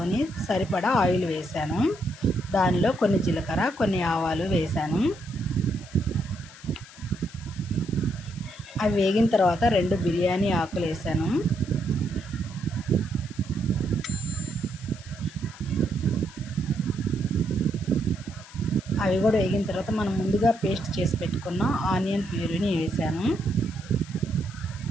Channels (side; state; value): left; noise; hiss, 20 dB below the sound